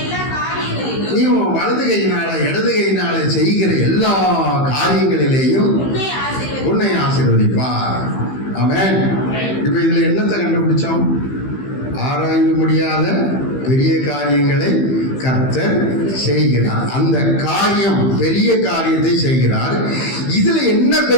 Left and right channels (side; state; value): right; late; 15 ms